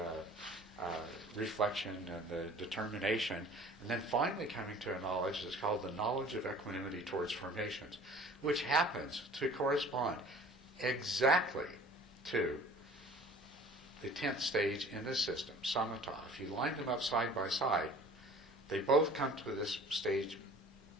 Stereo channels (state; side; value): normal; both; correlation 0.47